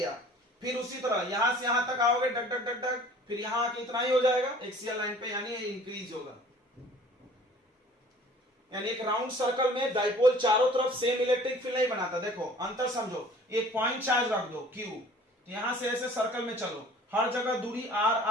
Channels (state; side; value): normal; both; correlation 0.49